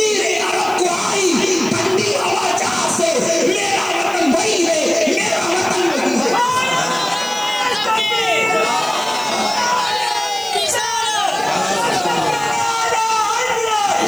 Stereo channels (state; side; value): noise; right; hiss, 21 dB below the sound